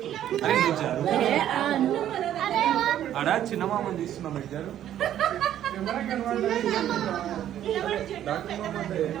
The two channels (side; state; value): left; quieter; 11.3 dB